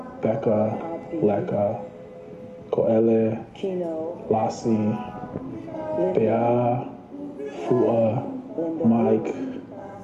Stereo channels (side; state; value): both; identical; correlation 1.00